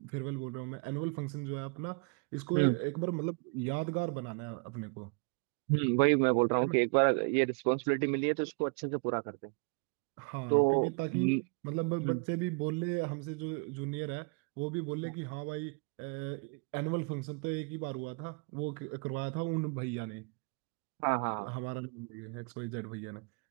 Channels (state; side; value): quieter; left; 33.7 dB